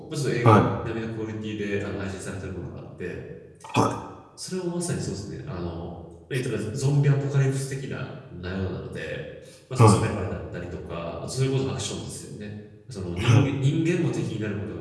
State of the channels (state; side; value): identical; both; correlation 1.00